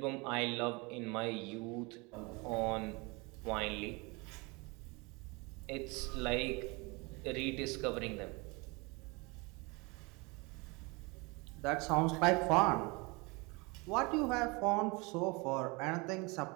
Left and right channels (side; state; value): left; quieter; 27.2 dB